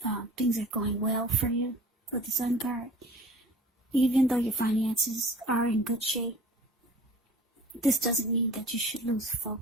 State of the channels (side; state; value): both; normal; correlation 0.45